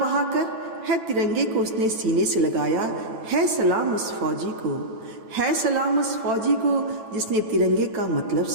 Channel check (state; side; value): late; left; 8.9 ms